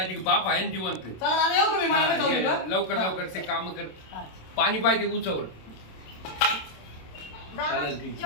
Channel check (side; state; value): right; late; 27 ms